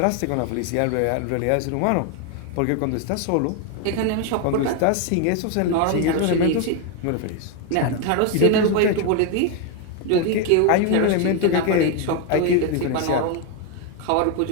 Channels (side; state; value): both; different; correlation 0.01